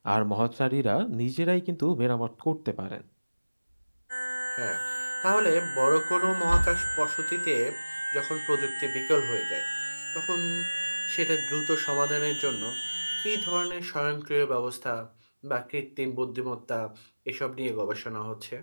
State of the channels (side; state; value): both; inverted; correlation -1.00